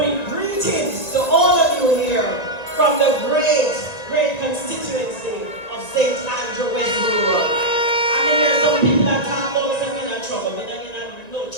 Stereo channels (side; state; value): right; late; 1.9 ms